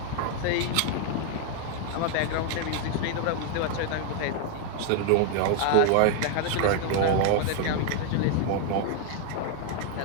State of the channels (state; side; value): different; both; correlation 0.00